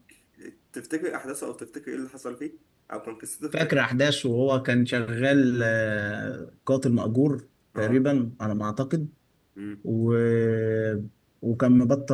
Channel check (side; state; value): both; identical; correlation 1.00